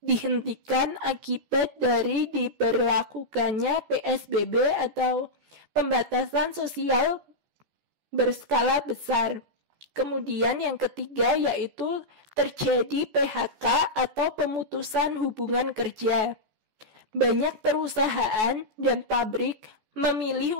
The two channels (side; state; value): left; late; 14 ms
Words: dihentikan akibat dari diberlakukannya PSBB atau pembatasan sosial berskala besar. Kemudian yang ketiga yaitu terjadi PHK atau pemutusan hubungan kerja. Banyak perusahaan dan pabrik memilih